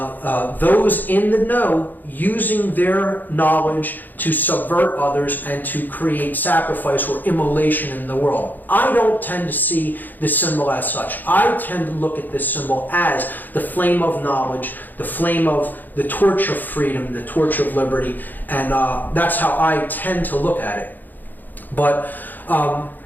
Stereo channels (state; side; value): late; right; 0.086 ms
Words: those in the know using their knowledge to subvert others and to create sacrifice or immolation in the world. I don't tend to see this symbol as such. I tend to look at this symbol as the flame of knowledge, the flame of the torch of freedom, the torch of liberty, and that's how I tend to look at it. But